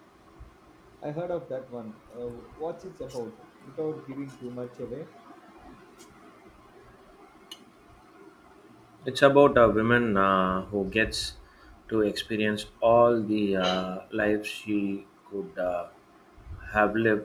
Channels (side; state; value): both; identical; correlation 1.00